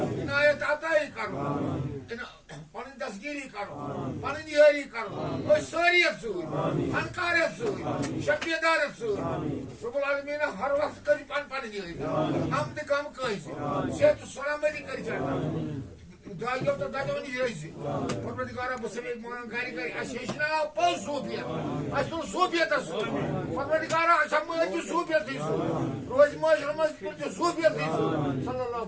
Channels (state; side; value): identical; both; correlation 1.00